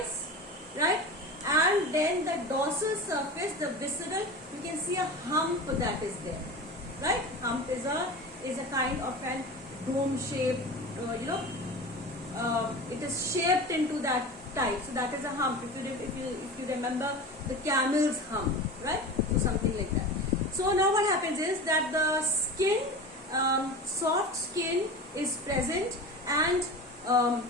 right? And then the dorsal surface, the visceral, you can see a hump that is there, right? Hump is a kind of an dome shape, it is shaped into that type. So that is a hump. If you remember the camel's hump, right? So something like that. So now what happens is that the skin, soft skin is present, and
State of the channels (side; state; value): both; normal; correlation 0.31